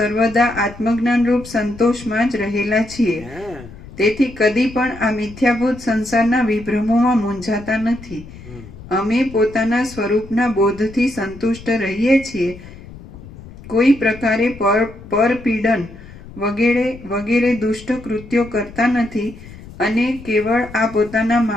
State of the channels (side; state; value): left; noise; rumble, 17 dB below the sound